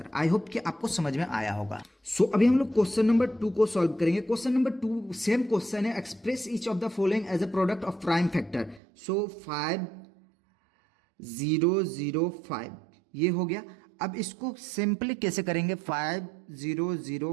आई होप कि आपको समझ में आया होगा। सो अभी हम लोग क्वेश्चन नंबर 2 को सॉल्व करेंगे। क्वेश्चन नंबर 2 सेम क्वेश्चन है, express each of the following as a product of prime factor. So 5 0 0 5 ये हो गया। अब इसको सिंपली कैसे करेंगे, 5 0 0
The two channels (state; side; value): drops out; left; at 8.8 s